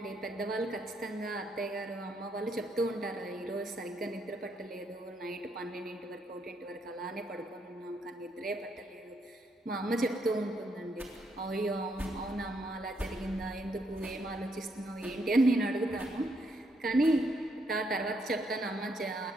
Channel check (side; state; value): both; normal; correlation 0.75